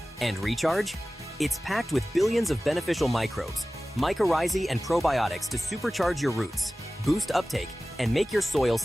And recharge? It's packed with billions of beneficial microbes, mycorrhizae and probiotics to supercharge your roots, boost uptake, and make your soil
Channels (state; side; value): normal; both; correlation 0.97